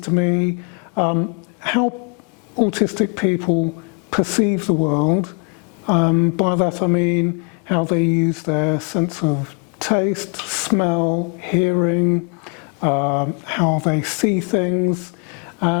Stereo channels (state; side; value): quieter; right; 38.9 dB